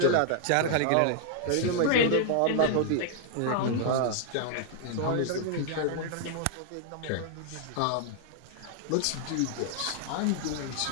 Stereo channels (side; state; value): both; different; correlation 0.00